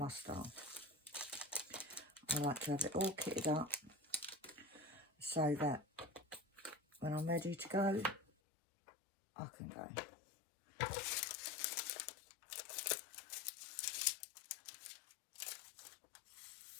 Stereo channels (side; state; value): right; drops out; at 8.2 s